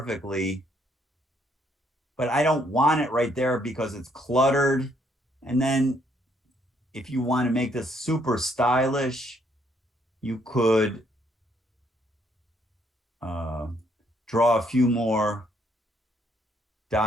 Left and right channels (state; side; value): normal; both; correlation 0.70